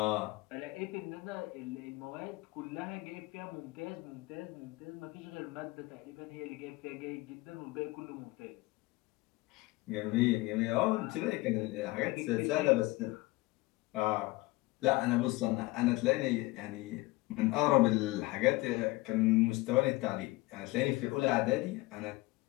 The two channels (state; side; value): quieter; right; 20.9 dB